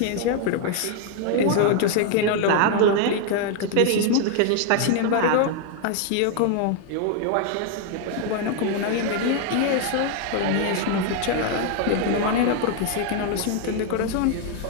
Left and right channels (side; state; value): both; different; correlation 0.00